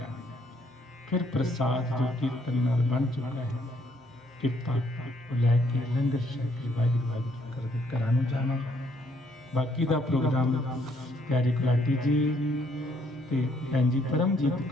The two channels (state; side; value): normal; both; correlation 0.68